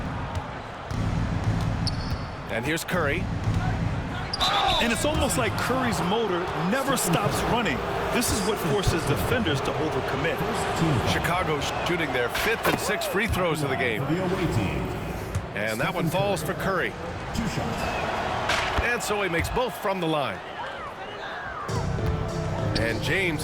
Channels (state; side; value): identical; both; correlation 1.00